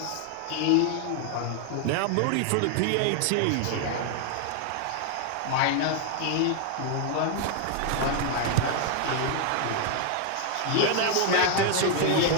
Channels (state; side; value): different; both; correlation 0.00